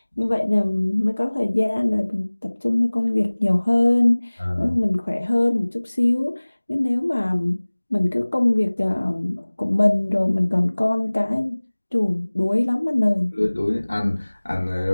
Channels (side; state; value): both; inverted; correlation -1.00